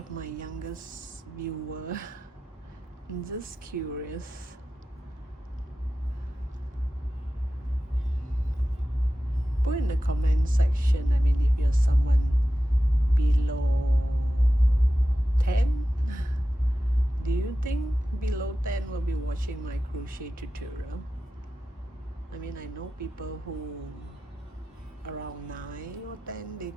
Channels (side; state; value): both; normal; correlation 0.93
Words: my youngest viewer. I'm just curious. Put in the comment section, I mean, if you're someone below 10, do you think below 10 will be watching my crochet tutorial? I mean, I know people who around 9 or 10, they